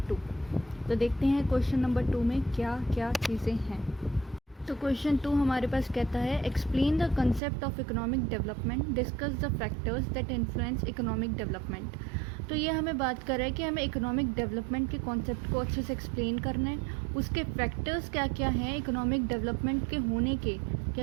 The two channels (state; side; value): drops out; left; at 7.4 s